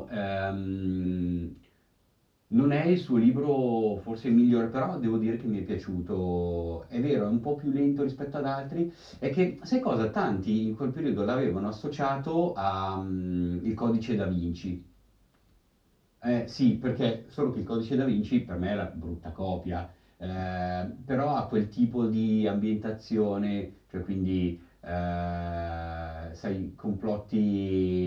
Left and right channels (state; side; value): identical; both; correlation 1.00